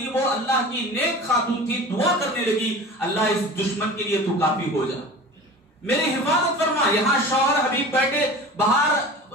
وہ اللہ کی نیک خاتون تھی، دعا کرنے لگی اللہ اس دشمن کے لیے تو کافی ہو جا، میری حفاظت فرما. یہاں شوہر حبیب بیٹھے باہر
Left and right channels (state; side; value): normal; both; correlation 0.36